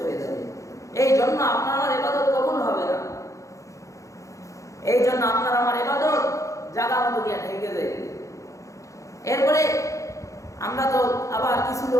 হয়ে যাবে। এই জন্য আপনার আমার ইবাদত কবুল হবে না। এই জন্য আপনার আমার ইবাদত জায়গা মতো গিয়ে ঠেকে যায়। এরপরে আমরা তো আবার কিছু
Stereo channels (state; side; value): late; right; 0.15 ms